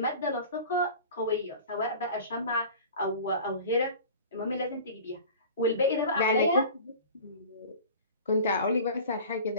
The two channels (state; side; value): inverted; both; correlation -0.40